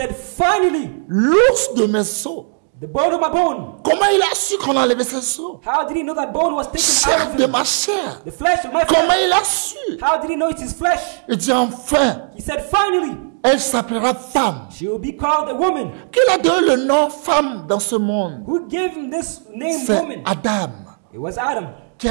finally, l'ours de mes os. the bone of my bone. Comment il a su qu'on a enlevé ses os? How did he know that bone was taken Chair out of de him? ma chair. The flesh of my Comment flesh. il a su? How did he know it's his flesh? Il dit, enfin, He said, finally, elle s'appellera femme. she will be called a woman. Qui a donné le nom femme dans ce monde? Who gave him this name, C'est woman? Adam It was Adam. qui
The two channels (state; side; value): silent; left; digital silence